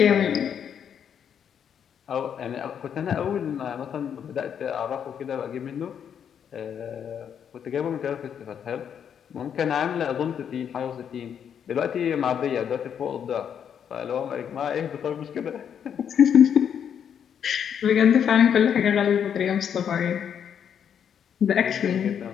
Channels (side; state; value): right; quieter; 8.3 dB